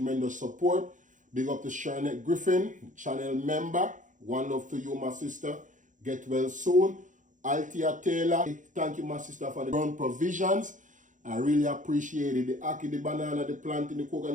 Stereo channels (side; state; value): left; late; 0.37 ms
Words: support. Big up to Charlotte Griffin, channel member. One love to you, my sister. Get well soon. Althea Taylor, thank you, my sister, for the ground provisions. I really appreciate it. The ackee, the banana, the plantain, the